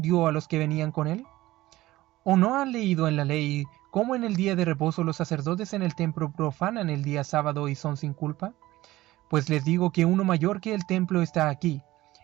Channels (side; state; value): left; quieter; 17.0 dB